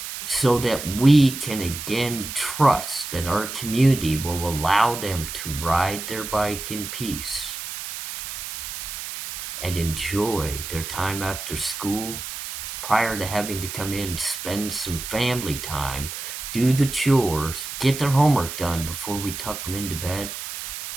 so that we can again trust that our community will allow them to ride their bike in peace and enjoy their time after school prior to having to come in, spend some family time, do the chores, get their homework done before we tuck them into bed,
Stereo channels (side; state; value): right; noise; hiss, 8 dB below the sound